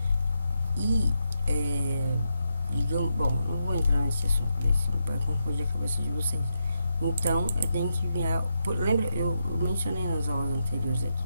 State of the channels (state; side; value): inverted; both; correlation -0.84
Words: E digamos, bom, não vou entrar nesse assunto, vai confundir a cabeça de vocês. Então eu tenho que enviar. Lembra, eu mencionei nas aulas anteriores aqui,